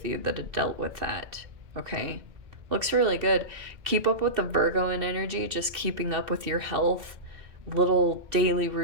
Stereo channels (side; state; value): left; late; 2.6 ms